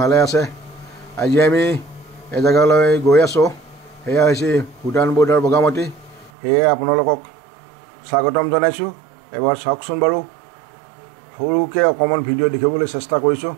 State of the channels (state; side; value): drops out; left; at 6.3 s